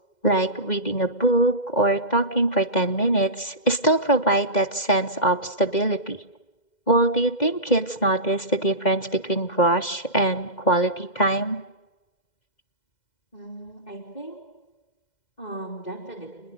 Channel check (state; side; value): late; right; 2.0 ms